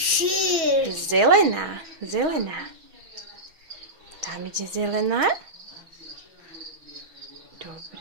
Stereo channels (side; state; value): left; late; 6.2 ms